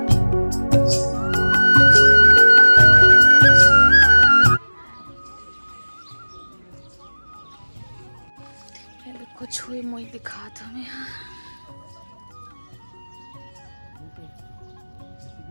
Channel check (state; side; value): inverted; both; correlation -1.00